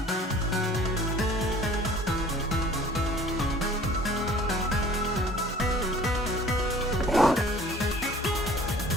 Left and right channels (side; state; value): both; normal; correlation 0.49